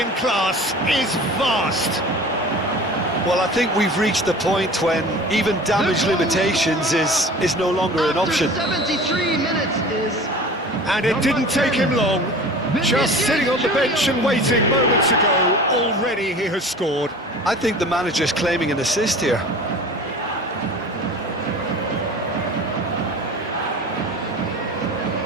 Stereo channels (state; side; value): normal; both; correlation 0.40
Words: class is vast. Well, I think we've reached the point when even damage limitations is no longer an option. After 73 minutes is... And it didn't take him long. Just sitting on the bench and waiting moments ago, already he has scored. I think the manager's claiming an assist here.